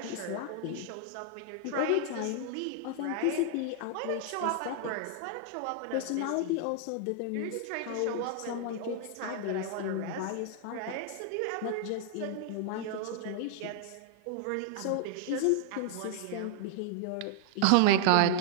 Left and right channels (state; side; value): different; both; correlation 0.00